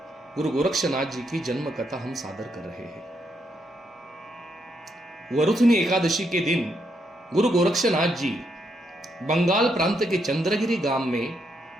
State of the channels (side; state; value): both; normal; correlation 0.78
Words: गुरु गोरक्षनाथ जी की जन्म कथा हम सादर कर रहे हैं। वरुथनी एकादशी के दिन गुरु गोरक्षनाथ जी बंगाल प्रांत के चंद्रगिरी गांव में